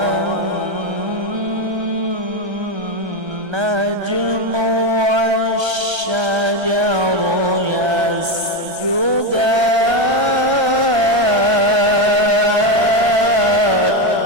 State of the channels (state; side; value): late; left; 1.3 ms